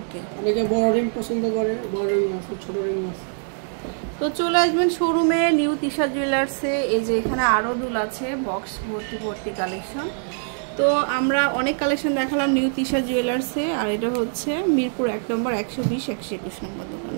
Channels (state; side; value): silent; left; 62 dB below the other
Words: ওকে অনেকে বড় রিং পছন্দ করে, বড় রিং আছে, ছোট রিং আছে। তো চলে আসবেন শোরুমে নিউ তিশা জুয়েলার্সে। এই যে এখানে আরও দুল আছে, বক্স ভর্তি ভর্তি কালেকশন। তো আমরা অনেক কালেকশন দেখালাম নিউ তিশা জুয়েলার্সে, আর এটা হচ্ছে মিরপুর 1 নম্বর 120 121 নম্বর দোকান।